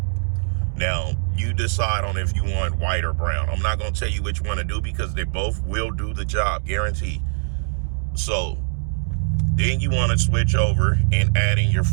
Now, you decide on if you want white or brown. I'm not going to tell you which one to do because they both will do the job, guaranteed. So, then you want to switch over and add in your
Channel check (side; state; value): left; silent; 64 dB below the other